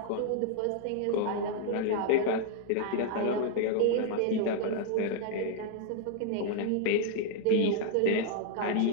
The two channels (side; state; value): both; different; correlation 0.00